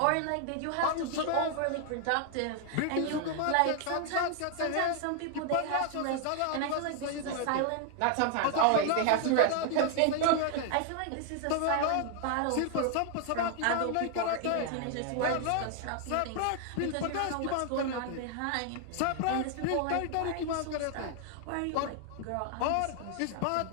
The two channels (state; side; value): different; both; correlation 0.00